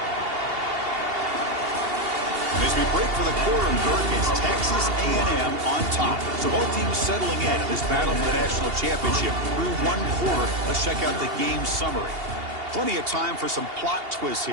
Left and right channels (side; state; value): left; late; 2.8 ms